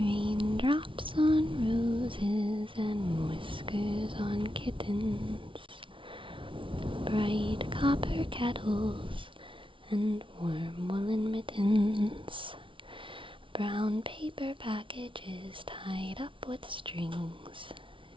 on roses and whiskers on kittens, bright copper kettles and warm woolen mittens, brown paper packages tied up with strings.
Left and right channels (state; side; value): late; left; 0.25 ms